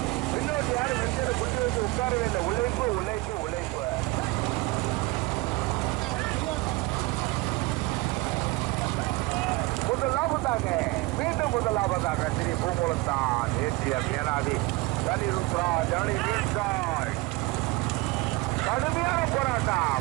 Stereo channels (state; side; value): quieter; left; 21.8 dB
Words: பின்னோட்டி யாரும் வெஞ்சரை குட்டி வச்சு உட்காரவே இல்லை. உழைப்பு உழைப்பு உழைப்பு. முதலாவதாக மீண்டும் முதலாவதாக ஸ்ரீ பூங்குளத்தான் ஏற்றியம் ஏனாதி கலிருத்ரா ஜானி வீழ்ந்தாள். கடுமையான